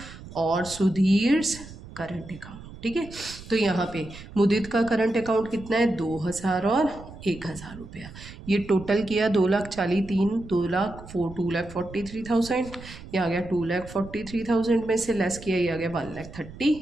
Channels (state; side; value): noise; right; rumble, 16 dB below the sound